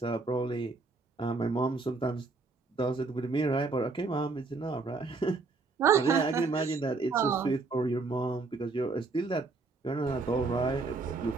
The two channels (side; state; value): left; quieter; 3.9 dB